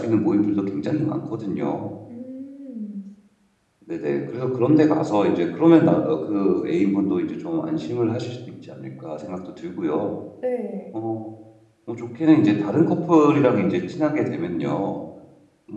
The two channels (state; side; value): identical; both; correlation 1.00